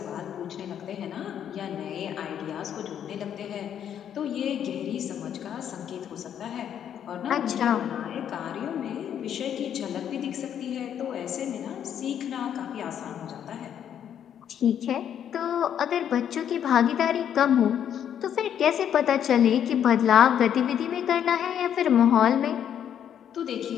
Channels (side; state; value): right; quieter; 9.3 dB